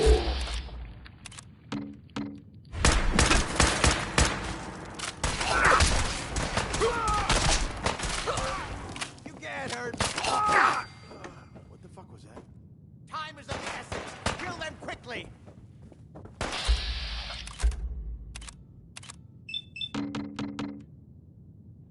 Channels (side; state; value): both; identical; correlation 1.00